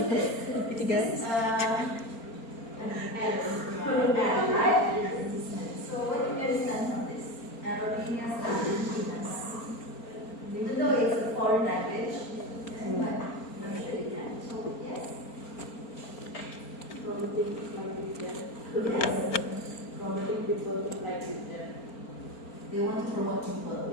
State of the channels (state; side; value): late; right; 4.4 ms